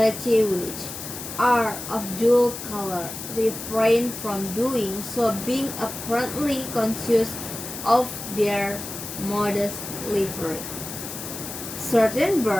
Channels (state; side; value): noise; left; hiss, 9 dB below the sound